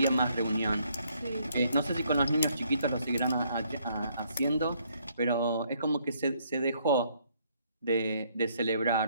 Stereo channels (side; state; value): both; inverted; correlation -0.69